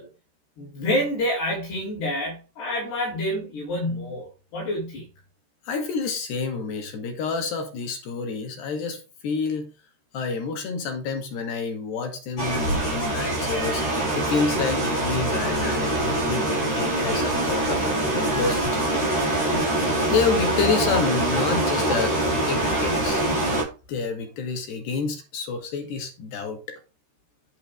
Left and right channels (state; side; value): late; right; 13 ms